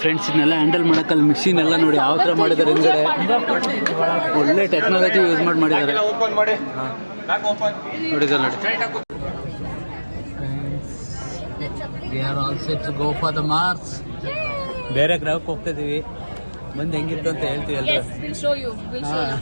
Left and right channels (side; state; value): both; inverted; correlation -1.00